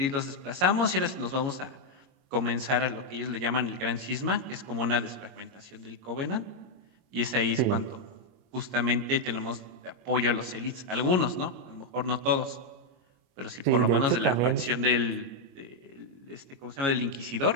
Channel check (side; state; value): left; late; 22 ms